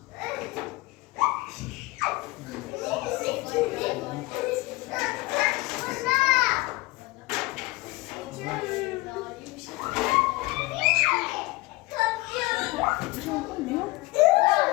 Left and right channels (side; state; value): right; quieter; 22.4 dB